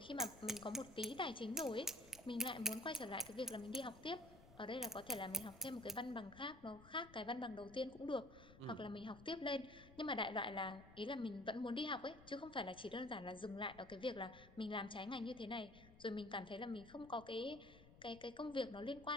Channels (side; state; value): left; noise; rumble, 20 dB below the sound